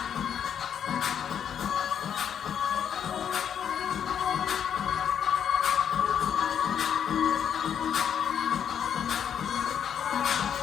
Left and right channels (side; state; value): right; quieter; 8.5 dB